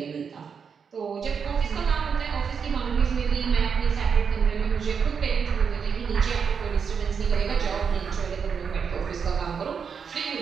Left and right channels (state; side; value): quieter; left; 6.4 dB